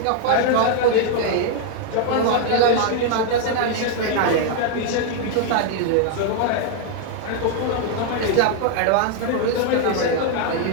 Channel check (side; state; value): both; different; correlation 0.00